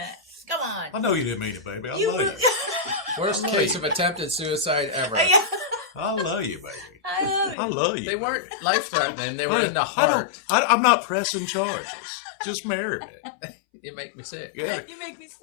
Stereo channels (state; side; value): drops out; right; at 7.6 s